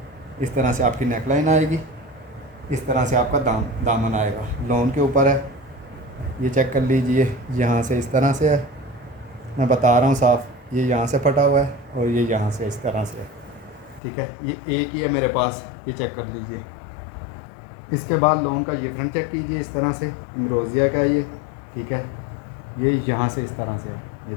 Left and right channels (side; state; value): right; drops out; at 14.0 s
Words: इस तरह से आपकी नेकलाइन आएगी, इस तरह से आपका दामन आएगा, लोन के ऊपर है। ये चेक कर लीजिए, यहाँ से इस तरह से है, मैं बता रहा हूँ साफ़, ये यहाँ से फटा हुआ है और ये यहाँ से इस तरह से है। ठीक है, ये एक ही है मेरे पास, ये चेक कर लीजिए। इसके बाद लोन का ये फ्रंट चेक कीजिए, इस तरह से इमरोज़िया का ये, ठीक है। ये यहाँ से इस तरह से है, ये